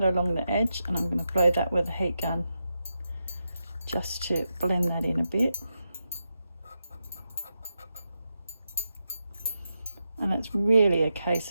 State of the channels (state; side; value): inverted; both; correlation -0.87